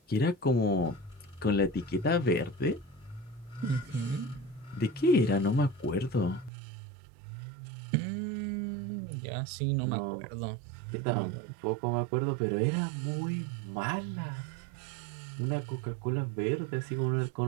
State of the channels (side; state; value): left; drops out; at 6.5 s